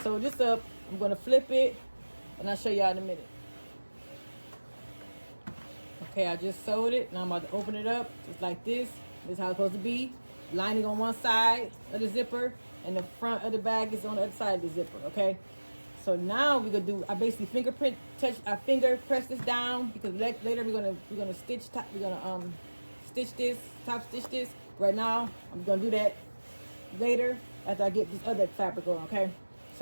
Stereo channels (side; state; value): both; inverted; correlation -1.00